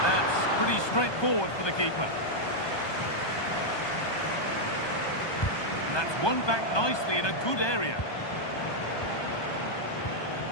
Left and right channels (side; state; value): right; late; 1.2 ms